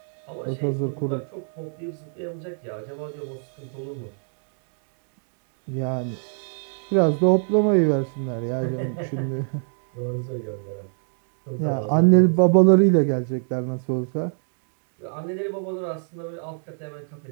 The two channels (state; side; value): silent; left; 62 dB below the other